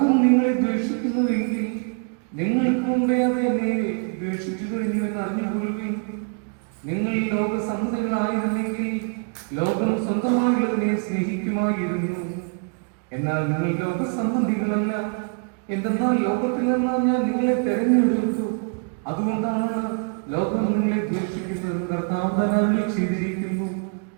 നിങ്ങളെ ദ്വേഷിക്കുന്നുവെങ്കിൽ നിങ്ങൾക്ക് മുമ്പേ അത് എന്നെ ദ്വേഷിച്ചു കഴിഞ്ഞു എന്ന് അറിഞ്ഞുകൊള്ളുകയും. നിങ്ങൾ ലോക സമ്മതികളായിരുന്നെങ്കിൽ ലോകം സ്വന്തമായുള്ളതിനെ സ്നേഹിക്കുമായിരുന്നു. എന്നാൽ നിങ്ങൾ ലോകസംബന്ധികളല്ല, എന്തെന്നാൽ ലോകത്തിൽ നിന്നാ ഞാൻ നിങ്ങളെ തെരഞ്ഞെടുത്തു. അതുകൊണ്ടാണ് ലോകം നിങ്ങളെ ദ്വേഷിക്കുന്നത് കർത്താവ് തന്നെ ചെയ്തിരിക്കുന്നു.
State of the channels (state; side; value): quieter; left; 39.2 dB